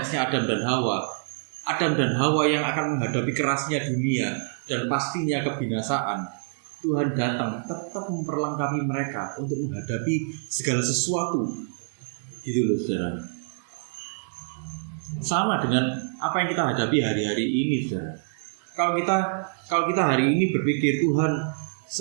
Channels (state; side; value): silent; left; digital silence